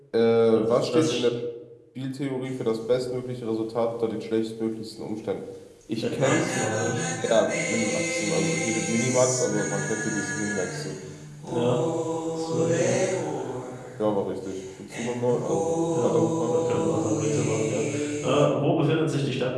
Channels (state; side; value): identical; both; correlation 1.00